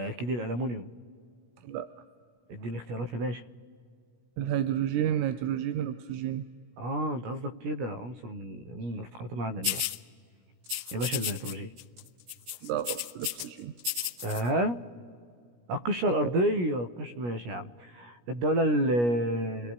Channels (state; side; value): late; left; 17 ms